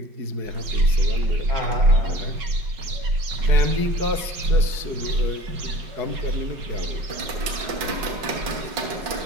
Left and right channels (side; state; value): left; late; 5.2 ms